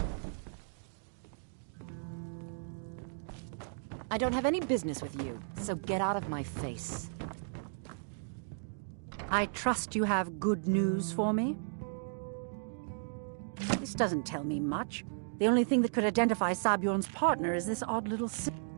I don't have any business with you, so get out of my face. I trust you have good news for me? This doesn't tell me much. The only thing that could identify Sabjorn's partner is this odd little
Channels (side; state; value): left; silent; digital silence